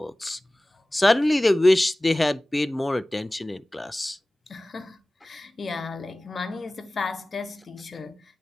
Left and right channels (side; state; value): both; normal; correlation 0.98